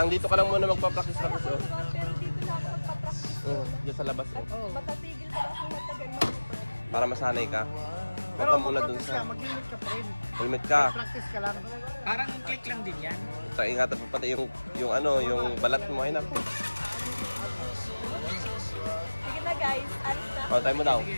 dito ka lang muna magpa-practice Kaya practice ako oh. naman, pero dito na ako magpa-practice. Diyan sa labas oh. Matatigil pa ako matagal mag-motor. Para masanay ka. Huwag ka muna dun sa... Mag-limit ka pa rin. Helmet ka. Practice ka lang. Parang click lang din yan. Sa ingatan mo pati yung ano, yung balat mo ay naku. Sige na guys, alis na. Oh, tayo mo daw.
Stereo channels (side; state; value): both; inverted; correlation -1.00